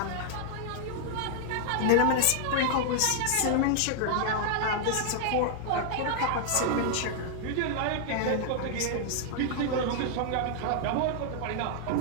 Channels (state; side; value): different; both; correlation 0.00